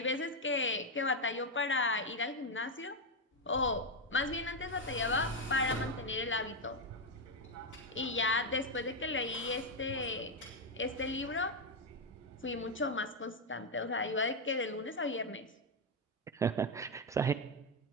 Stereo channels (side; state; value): both; normal; correlation 0.04